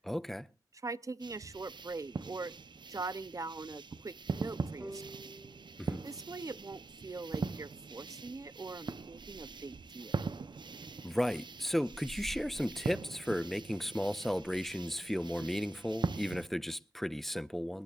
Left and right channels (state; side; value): normal; both; correlation 0.89